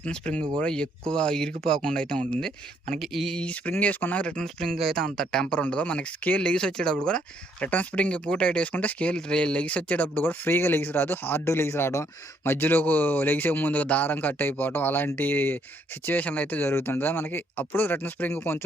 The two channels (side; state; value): both; normal; correlation 0.70